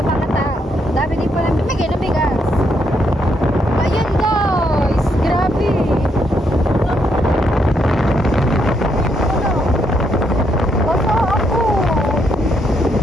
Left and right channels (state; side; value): normal; both; correlation 0.76